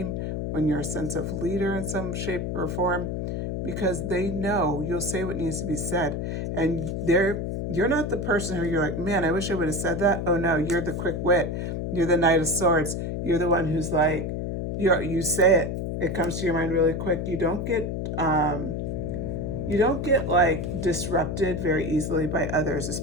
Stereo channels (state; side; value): noise; left; hum, 3 dB below the sound